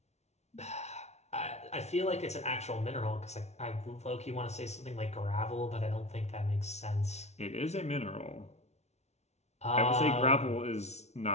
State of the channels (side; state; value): right; late; 0.32 ms